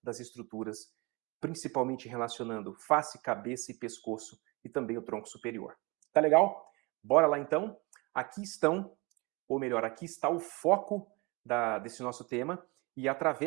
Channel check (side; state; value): left; quieter; 26.6 dB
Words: das estruturas, principalmente relacionando face, cabeça e pescoço e também o tronco superior. Tá legal? Bora lá então? Aqui estão, ou melhor, aqui está o foco desse nosso tema. E